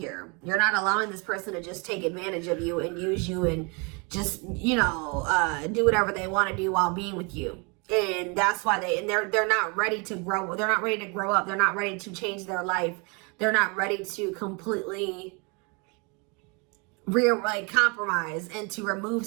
You're not allowing this person to just take advantage of you and use you and just, you know, do whatever they want to do while being with you. And that's why they're not ready to grow. They're not ready to grow up. They're not ready to change their life. They're not ready to completely compromise and to remove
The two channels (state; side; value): quieter; left; 31.7 dB